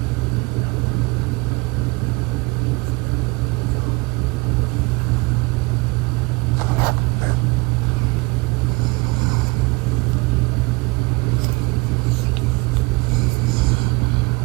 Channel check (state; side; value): quieter; left; 26.2 dB